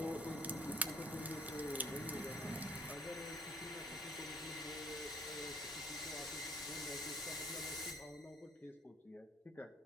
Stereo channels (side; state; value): both; normal; correlation 0.58